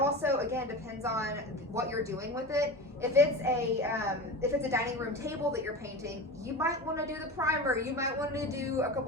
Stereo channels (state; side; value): normal; both; correlation 0.29